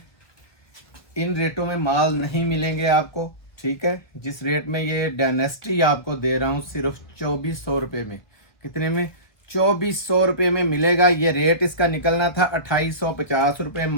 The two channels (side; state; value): right; late; 1.6 ms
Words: इन रेटों में माल नहीं मिलेंगे आपको, ठीक है। जिस रेट में ये डायनेस्टी आपको दे रहा हूँ सिर्फ 2400 रुपये में, कितने में, 2400 रुपये में मिलेगा। ये रेट इसका निकलना था 2850 रुपये,